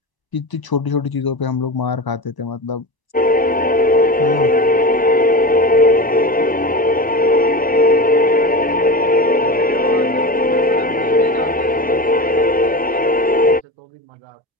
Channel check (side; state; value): both; normal; correlation 0.26